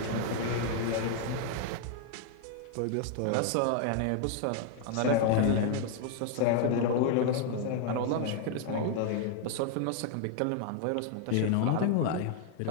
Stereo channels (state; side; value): different; both; correlation 0.00